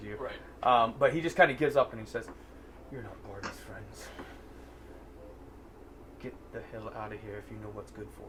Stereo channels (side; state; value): both; identical; correlation 1.00